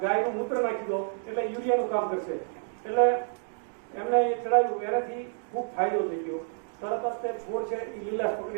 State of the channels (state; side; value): silent; left; digital silence